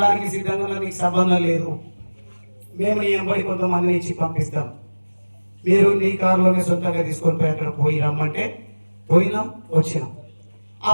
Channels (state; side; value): inverted; both; correlation -1.00